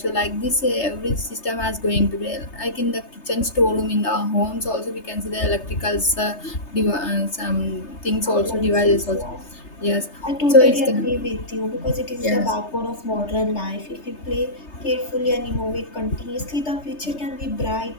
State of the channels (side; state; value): right; late; 3.3 ms